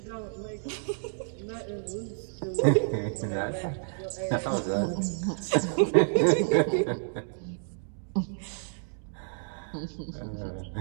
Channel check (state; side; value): silent; left; digital silence